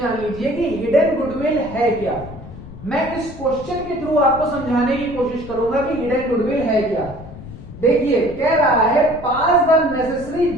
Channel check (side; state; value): left; noise; rumble, 14 dB below the sound